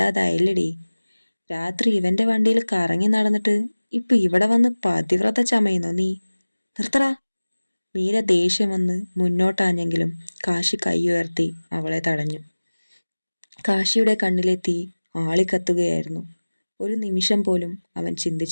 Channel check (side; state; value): both; inverted; correlation -1.00